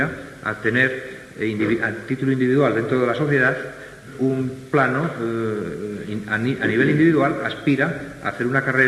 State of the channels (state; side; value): identical; both; correlation 1.00